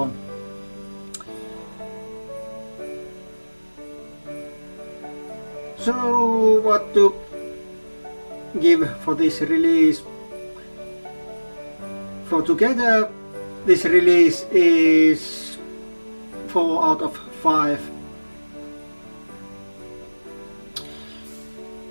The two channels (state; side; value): inverted; both; correlation -1.00